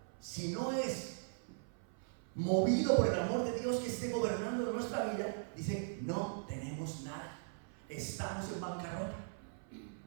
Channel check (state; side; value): silent; left; 52 dB below the other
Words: Si no es movido por el amor de Dios que esté gobernando de nuestra vida, dice, no tenemos nada, estamos en bancarrota.